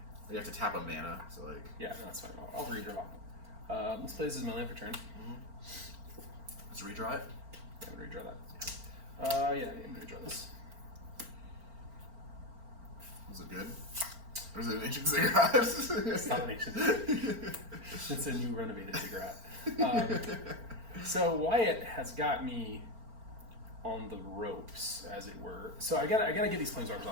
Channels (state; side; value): late; left; 4.4 ms